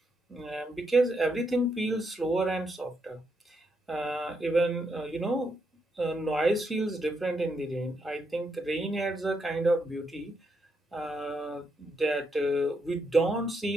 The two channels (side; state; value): both; normal; correlation 0.79